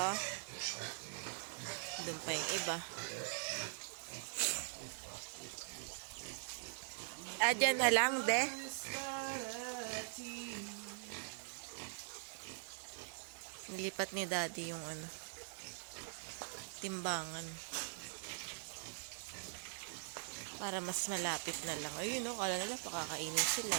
Doon pa yung iba. Dyan na lang, de. Nilipat ni Daddy yung ano, timbangan. Para mas malapit na lang. Ayun, oh. Kala nila pakakainin sila,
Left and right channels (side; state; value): left; silent; digital silence